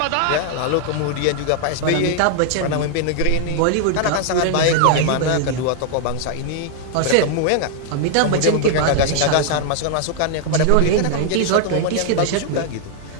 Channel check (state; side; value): different; both; correlation 0.00